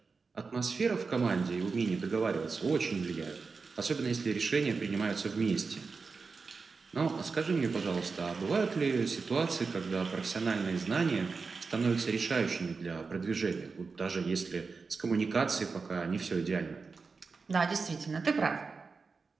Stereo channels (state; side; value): quieter; left; 4.6 dB